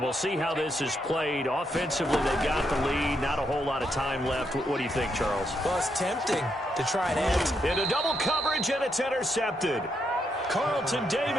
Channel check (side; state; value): both; normal; correlation 0.79